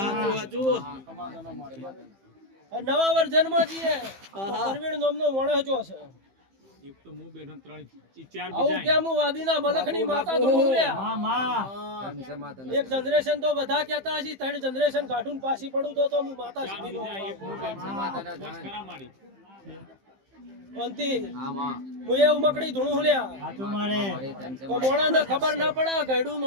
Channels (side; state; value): left; late; 15 ms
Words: નવા વર્ઝનમાં જઈએ પરવીણ નામનો મોણસ જો છે એક તો હું બેઠો 3 4 આવું બીજા કેમ હું વાદીના મલખની માતા ધૂણું લ્યા એક જનરેશન તો બધા કહેતા હશે 3 જનરેશન કાઢું પાછી પડું તો હું માતા સીધી નો ખરા મારી અંતી હું એ ઉમકડી ધૂણું લ્યા તો મોણાને ખબર ના પડે ગયડું